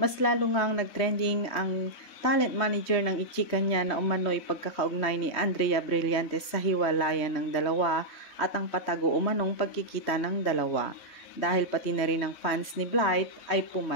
lalo ngang nagtrending ang talent manager ng ichika niya na umano'y pagkakaugnay ni Andrea Brillantes sa hiwalayan ng dalawa at ang patago umanong pagkikita ng dalawa. Dahil pati na rin ang fans ni Blythe ay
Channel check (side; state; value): right; late; 3.2 ms